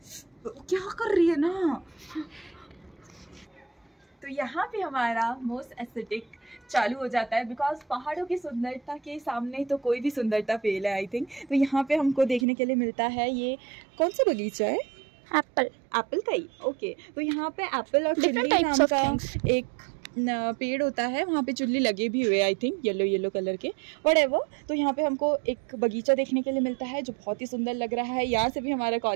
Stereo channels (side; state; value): left; drops out; at 12.5 s